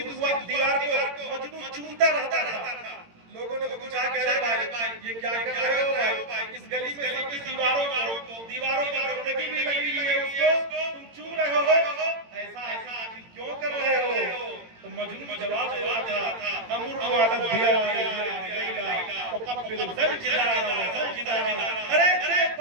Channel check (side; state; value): left; late; 18 ms